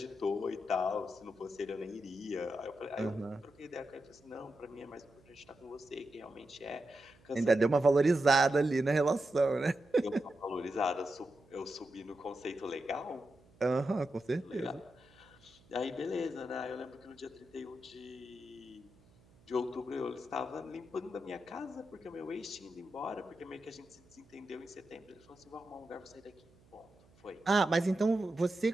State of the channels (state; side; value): noise; right; hum, 28 dB below the sound